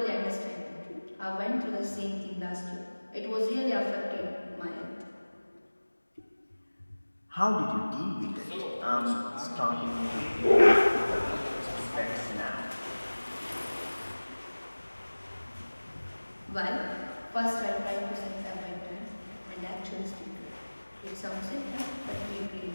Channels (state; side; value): inverted; both; correlation -1.00